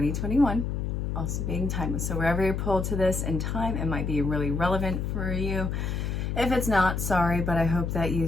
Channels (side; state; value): left; noise; hum, 2 dB below the sound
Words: Also being timeless. So wherever you're pulled to this in time, it might be really relevant for you. If it's not, sorry, but I hope that you